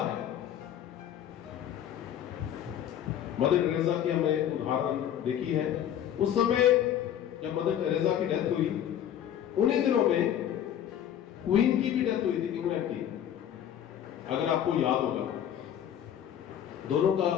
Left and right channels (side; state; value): right; quieter; 10.3 dB